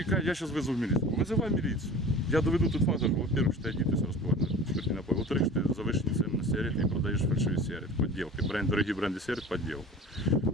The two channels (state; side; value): normal; both; correlation 0.40